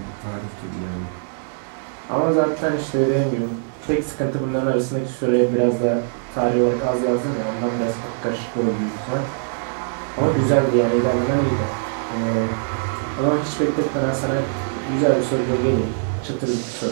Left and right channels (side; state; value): left; silent; digital silence